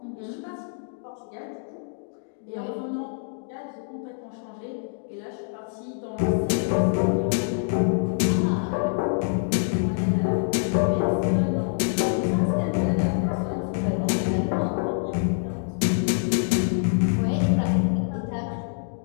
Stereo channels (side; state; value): right; silent; digital silence